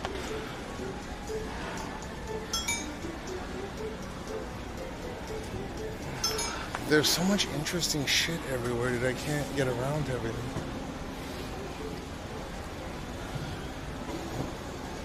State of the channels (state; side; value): identical; both; correlation 1.00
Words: There's so much interesting shit everywhere that I can't get around to everything.